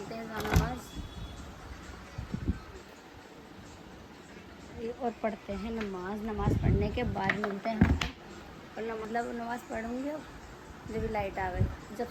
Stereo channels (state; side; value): identical; both; correlation 1.00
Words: हैं नमाज और पढ़ते हैं नमाज। नमाज पढ़ने के बाद मिलते हैं और मतलब नमाज पढ़ूंगी अब जब लाइट आ गई, जब